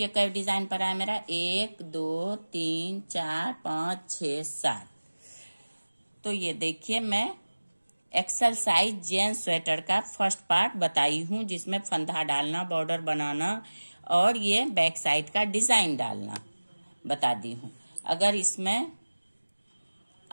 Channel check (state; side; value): inverted; both; correlation -1.00